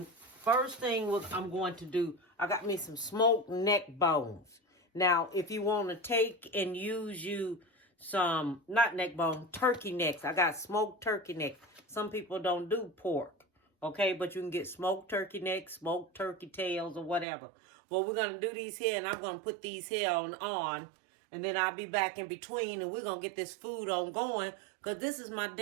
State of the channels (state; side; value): drops out; left; at 17.2 s